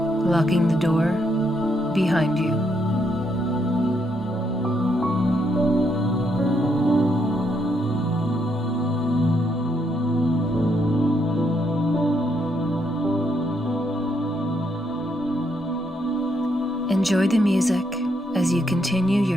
Locking the door behind you. Enjoy the music as you continue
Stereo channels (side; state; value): both; normal; correlation 0.76